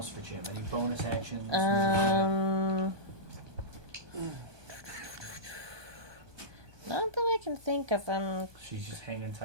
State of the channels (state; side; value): late; left; 1.2 ms